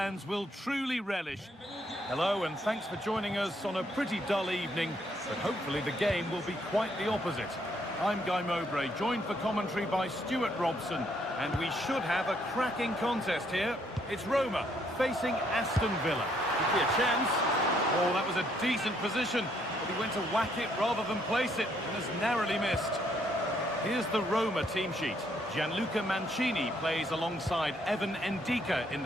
will truly relish. Hello, and thanks for joining us on a pretty dull evening, but hopefully the game will be quite the opposite. I'm Guy Mowbray, joined for commentary by Stuart Robson, and we should have a cracking contest here. It's Roma facing Aston Villa. Could be a chance. Oh, that was a decent position, but he went to whack it rather than place it, and has narrowly missed. Here's the Roma team sheet. Gianluca Mancini plays alongside Evan Ndika in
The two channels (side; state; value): both; normal; correlation 0.70